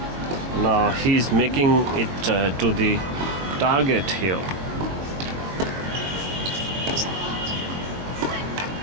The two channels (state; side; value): late; left; 22 ms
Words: Now he's making it to the target here.